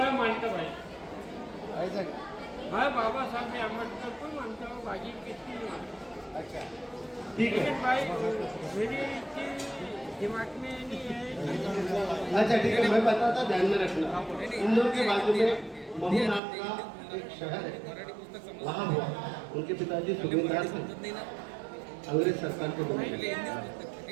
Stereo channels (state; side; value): drops out; left; at 16.4 s